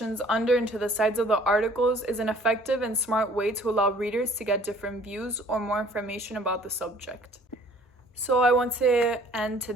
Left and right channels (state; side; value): normal; both; correlation 0.54